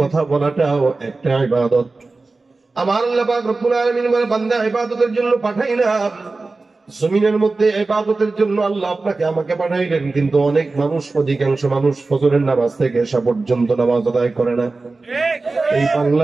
কথা বলাটাও একটা ইবাদত। আমার আল্লাহ পাক রব্বুল আলামিন বলে, বান্দা ইবাদতের জন্য পাঠাইলাম। জমিনের মধ্যে ইবাদতের জন্য আল্লাহ আপনাকে আমাকে পাঠাইলেন, কিন্তু অনেক মানুষ, অধিকাংশ মানুষ ফজরের নামাজ থেকে এসা পর্যন্ত নামাজ আদায় করে না। এই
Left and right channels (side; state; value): left; quieter; 3.6 dB